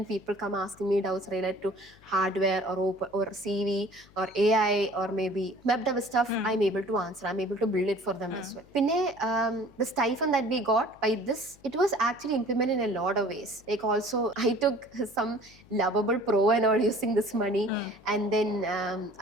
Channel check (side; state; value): left; noise; hum, 27 dB below the sound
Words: people come asking me doubts related to hardware or CV or AI or maybe web dev stuff, I'm able to answer. I'm able to build it for them as well. Pinne the stipend that we got by this, it was actually implemented in a lot of ways. Like also I took some lovable pro and all using this money, and then